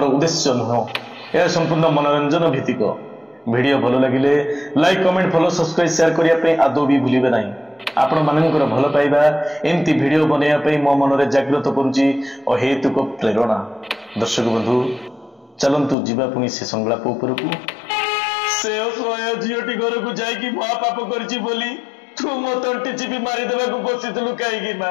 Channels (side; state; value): right; drops out; at 16.0 s